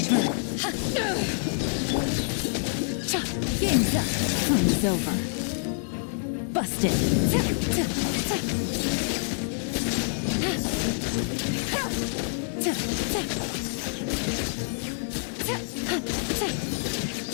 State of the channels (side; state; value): right; silent; 60 dB below the other